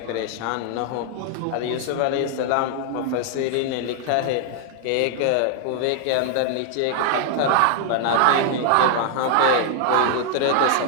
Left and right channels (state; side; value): different; both; correlation 0.00